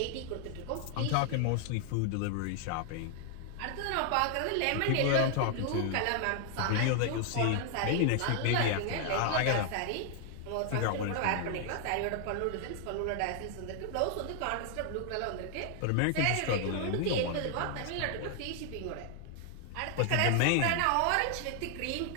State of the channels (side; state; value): both; different; correlation 0.00